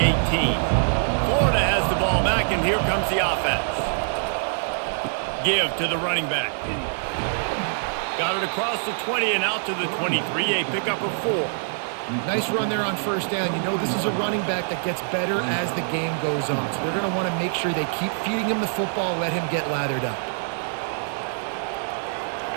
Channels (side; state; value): left; silent; digital silence